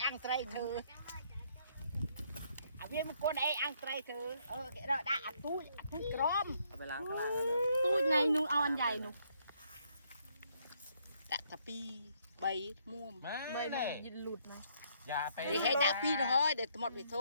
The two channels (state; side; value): inverted; both; correlation -0.70